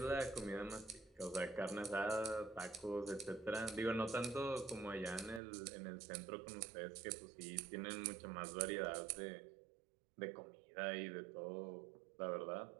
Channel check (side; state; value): left; drops out; at 5.4 s